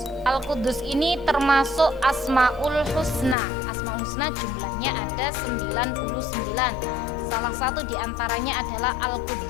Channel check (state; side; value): drops out; right; at 3.4 s